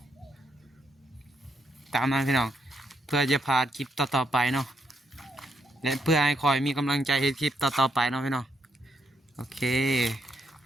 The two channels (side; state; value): both; normal; correlation 0.78